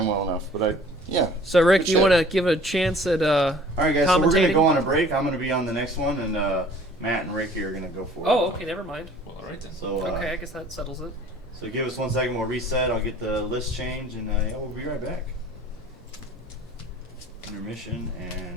well enough, but yeah. So Rick, Good do you shit. want to give a chance at All right, guys. So we're gonna Commentating? go on a break. I'm gonna be on the next one, and Matt and Ricky are gonna go for it. Oh, okay, never mind. Well, alright then. So Okay, I guess that settles it. so give us 1 second. We'll reset. I'll get the list change, and yeah, we'll be right back. Intermission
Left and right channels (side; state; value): both; normal; correlation 0.51